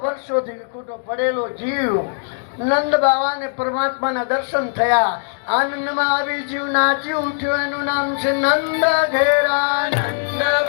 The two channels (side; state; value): right; silent; digital silence